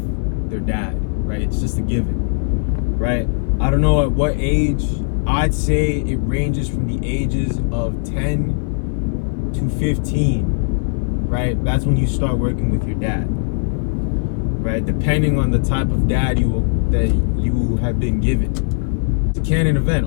their dad, right? It's just a given, right? I don't know at what age. I'd say it ranges from the ages of 10 to 15, right? That's when you start working with your dad, right? Depending on the type of dad that you have been given. It's a canon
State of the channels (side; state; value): right; silent; 67 dB below the other